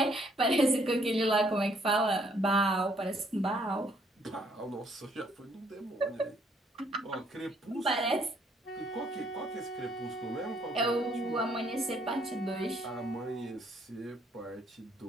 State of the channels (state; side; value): normal; both; correlation 0.67